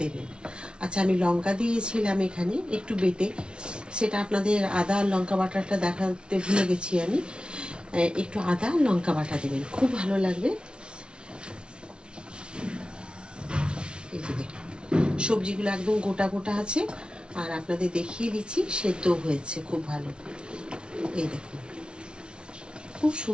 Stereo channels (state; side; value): late; left; 0.056 ms